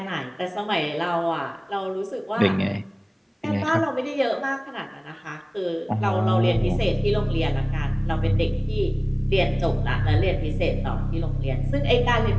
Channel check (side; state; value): both; identical; correlation 1.00